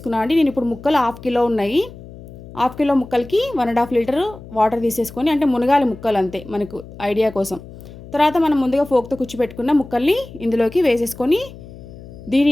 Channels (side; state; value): left; noise; hum, 17 dB below the sound